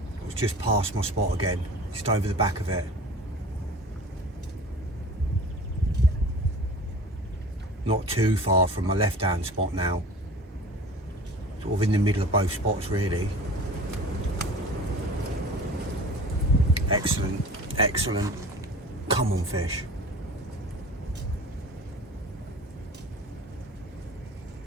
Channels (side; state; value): both; normal; correlation 0.41